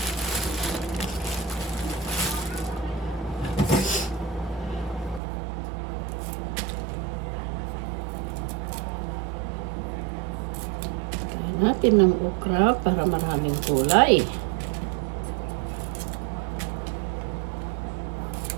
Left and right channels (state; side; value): drops out; left; at 5.2 s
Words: Kain natin ng okra para maraming kulay.